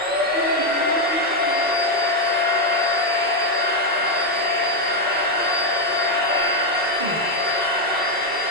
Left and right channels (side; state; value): both; normal; correlation 0.03